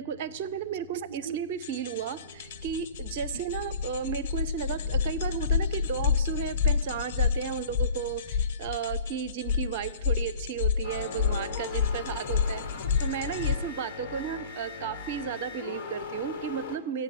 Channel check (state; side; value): inverted; both; correlation -0.42